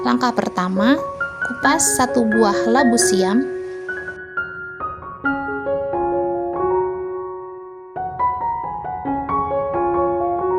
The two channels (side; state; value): both; identical; correlation 1.00